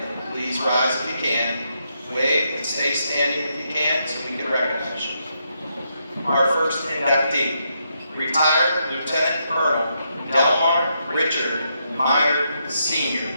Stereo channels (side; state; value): both; inverted; correlation -0.80